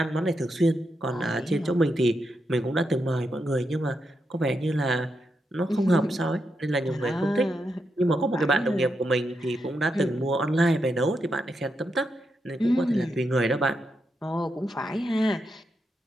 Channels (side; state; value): both; normal; correlation 0.84